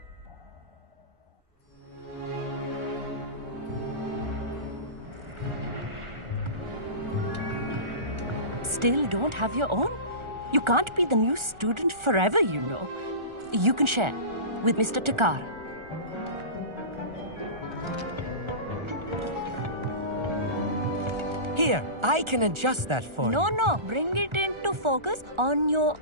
Still don't have your own? You can't be the new student forever, you know. You can share with Mr. Takar. Here, I can adjust that for you. No, bring it into focus on your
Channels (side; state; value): left; late; 1.4 ms